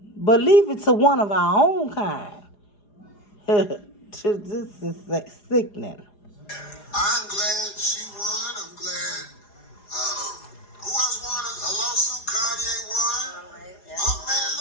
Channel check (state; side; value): late; right; 4.9 ms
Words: But leave it to one of our own kind. This is sickening. I'm glad she won. I'm glad. Who else won a lawsuit? Kanye won. Yeah. Oh man,